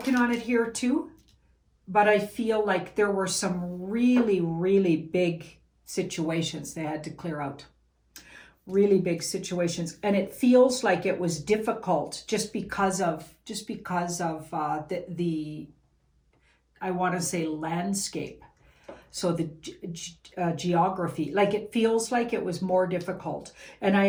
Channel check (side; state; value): both; identical; correlation 1.00